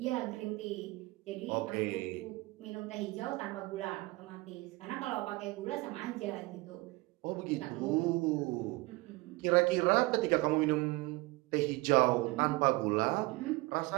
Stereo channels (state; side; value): quieter; left; 22.5 dB